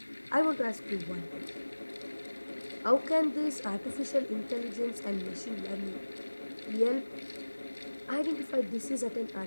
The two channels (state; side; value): inverted; both; correlation -1.00